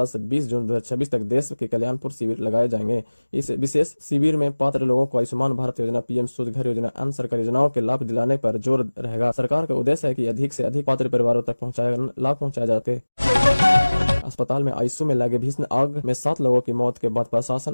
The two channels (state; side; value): inverted; both; correlation -1.00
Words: से 20 जून 2026 तक देश के कल्याणपुर शिविर लगाए जाएंगे। इस विशेष शिविर में पात्र लोगों को आयुष्मान भारत योजना, पीएम सूर्य घर योजना, अन्य सरकारी योजनाओं के लाभ दिलाने पर जोर रहेगा। सरकार का उद्देश्य है कि अधिक से अधिक पात्र परिवारों तक लाभ पहुंचाया जाए। अस्पताल में आईसीयू में लगे भीषण आग में 7 लोगों की मौत के बाद प्रशासन